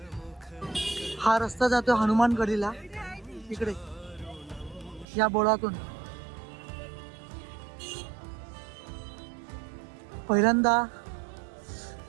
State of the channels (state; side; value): drops out; left; at 5.1 s